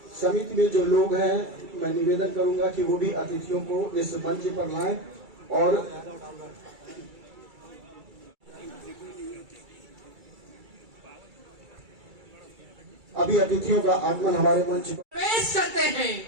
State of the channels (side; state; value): left; late; 2.3 ms